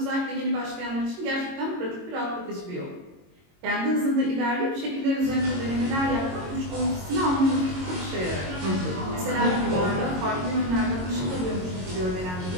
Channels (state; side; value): late; left; 22 ms